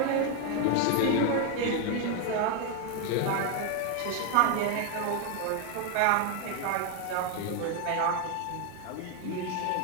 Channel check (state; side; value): different; both; correlation 0.01